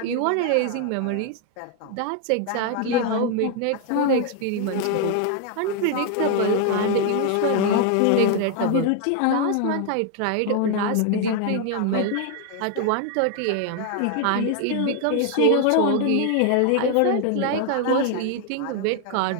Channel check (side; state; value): both; different; correlation 0.00